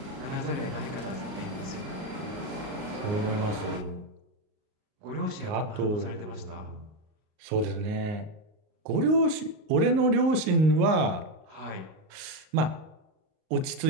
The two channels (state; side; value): late; left; 38 ms